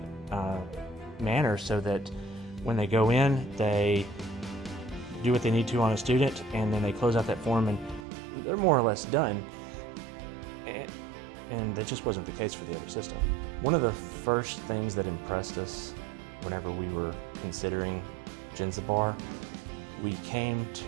manner, so that when they go in, they do what they need to on a student, and then they close out that form and they're more or less done. And that just wasn't the case for the other system. One of the first things that impressed us whenever we were considering Jenzabar, we came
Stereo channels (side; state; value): left; drops out; at 8.0 s